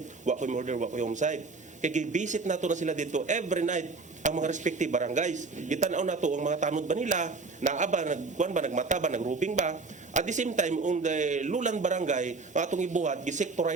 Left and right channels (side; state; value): left; quieter; 4.0 dB